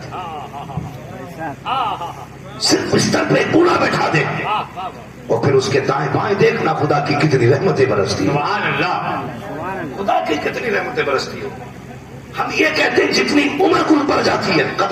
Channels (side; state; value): both; identical; correlation 1.00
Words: صرف بستر پہ بوڑھا بیٹھا دے, اور پھر اس کے دائیں بائیں دیکھنا خدا کی کتنی رحمتیں برستی ہو. سبحان اللہ, خدا کی کتنی رحمتیں برستی ہو. ہم یہ کہتے ہیں جتنی عمر کل پڑ جاتی ہے